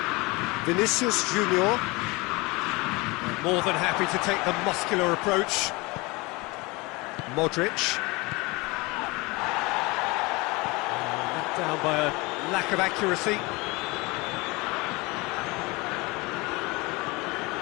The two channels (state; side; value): quieter; right; 24.6 dB